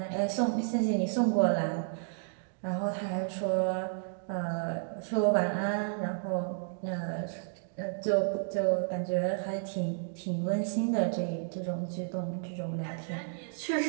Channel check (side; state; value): left; silent; digital silence